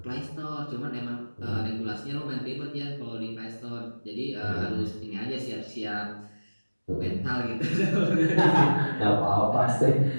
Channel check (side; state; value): both; inverted; correlation -1.00